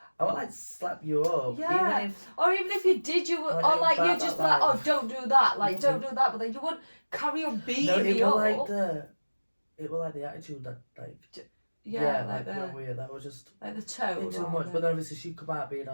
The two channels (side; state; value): both; inverted; correlation -1.00